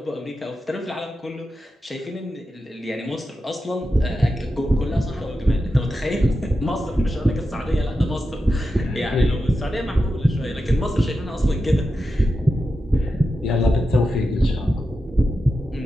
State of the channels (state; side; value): normal; both; correlation 0.90